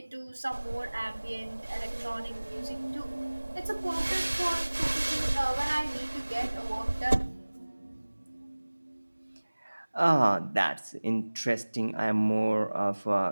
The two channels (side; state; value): both; inverted; correlation -1.00